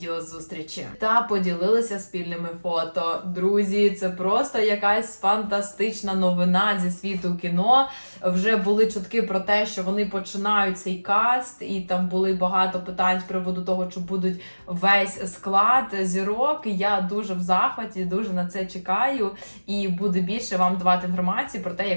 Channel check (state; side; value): inverted; both; correlation -1.00